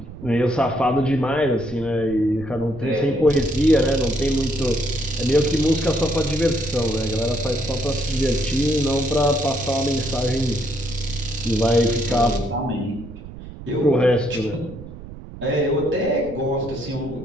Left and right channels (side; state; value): right; noise; rumble, 14 dB below the sound